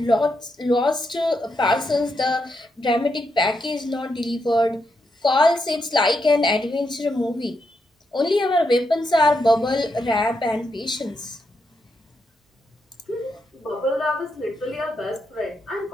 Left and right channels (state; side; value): normal; both; correlation 0.82